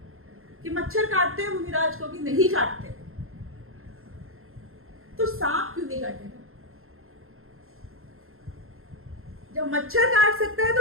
कि मच्छर काटते हैं मुनिराज को कि नहीं काटते, तो सांप क्यों नहीं काटेगा? जब मच्छर काट सकता है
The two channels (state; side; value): late; left; 0.61 ms